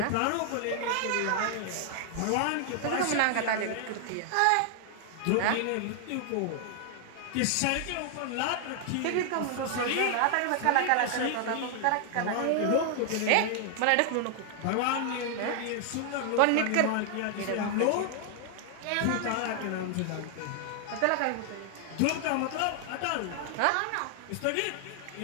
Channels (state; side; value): different; both; correlation 0.00